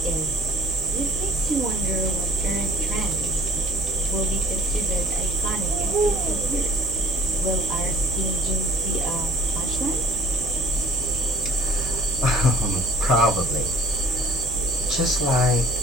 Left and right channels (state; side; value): normal; both; correlation 0.54